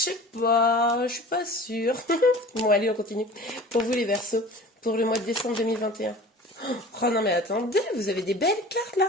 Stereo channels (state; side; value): normal; both; correlation 0.40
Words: pas, je suis pas sûre. Bon, allez, on continue. Pour vous, les Verseaux, pour le mois de décembre 2021. Oh non, mais attendez, vous avez des belles cartes,